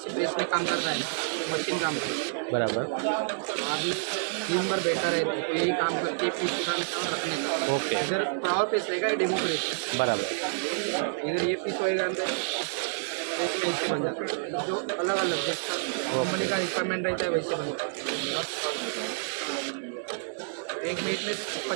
से प्रेस में काम करता है, मशीन काम करता है બરાબર. आदमी दिन भर बैठा रहता है, तो यही काम करके पीस उठाने का और रखने का. ઓકે, इधर पावर प्रेस रहेगा, ये डेमो प्रेस है. બરાબર. इधर ये पीस होएगा अंदर प्रेस में ऐसे बन जाता है. जो अलग अलग जैसा कंपनी का रिक्वायरमेंट रहता है वैसे बनता है. 1 मिनट में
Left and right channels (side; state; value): left; silent; 59 dB below the other